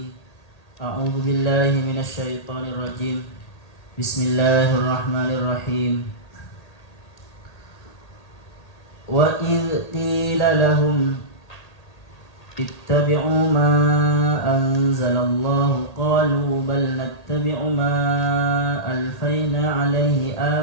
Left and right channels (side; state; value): right; late; 1.8 ms